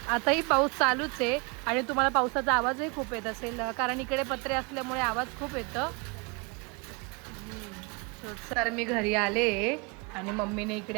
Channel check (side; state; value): left; quieter; 30.6 dB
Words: पाऊस चालूच आहे आणि तुम्हाला पावसाचा आवाजही खूप येत असेल, कारण इकडे पत्रे असल्यामुळे आवाज खूप येतं. तर मी घरी आले आणि मम्मीने